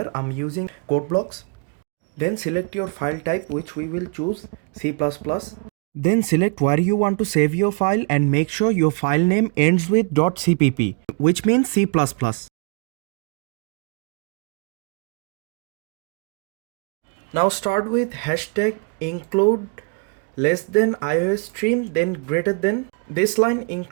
I'm using code blocks. Then select your file type, which we will choose C++. Then select where you want to save your file and make sure your file name ends with .cpp, which means C++. Now start with hashtag include less than iOS stream, then greater than. This line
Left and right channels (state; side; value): quieter; left; 35.5 dB